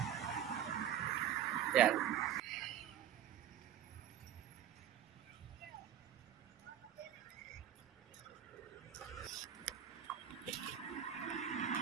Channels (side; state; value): left; quieter; 10.2 dB